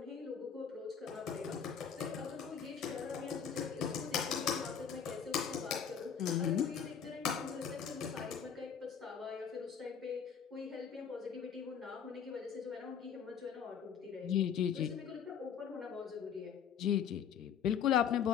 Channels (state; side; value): quieter; right; 7.6 dB